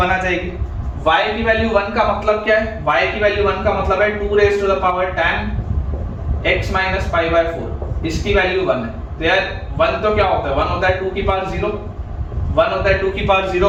आ जाएगी। y की वैल्यू 1 का मतलब क्या है, y की वैल्यू 1 का मतलब है 2 raised to the power tan x minus pi by 4, इसकी वैल्यू 1 है। तो यार 1 तो क्या होता है, 1 होता है 2 की पावर 0, 1 होता है 2 की पावर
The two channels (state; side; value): identical; both; correlation 1.00